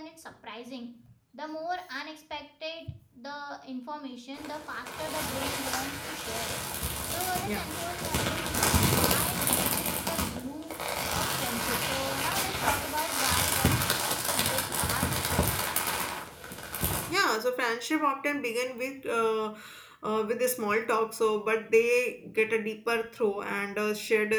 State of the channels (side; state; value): both; identical; correlation 1.00